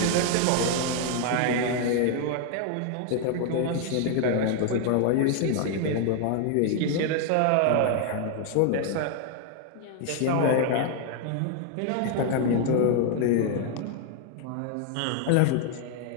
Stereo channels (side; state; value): both; different; correlation 0.00